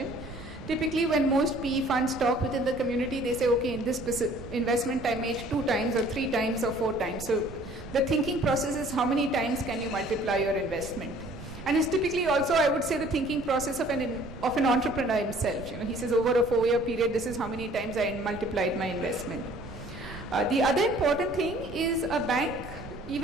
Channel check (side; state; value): right; noise; rumble, 13 dB below the sound